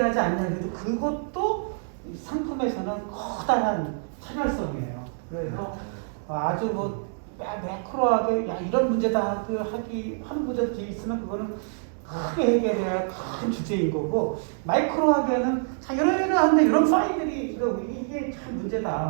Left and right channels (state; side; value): silent; left; digital silence